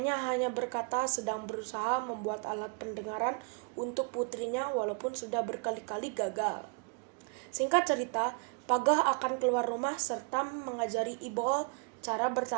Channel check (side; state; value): left; quieter; 36.4 dB